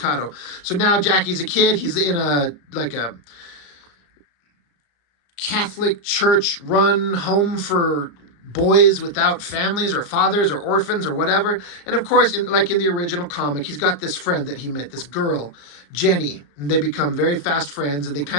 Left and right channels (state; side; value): late; right; 35 ms